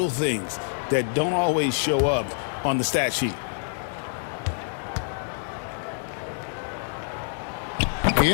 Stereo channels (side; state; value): right; silent; digital silence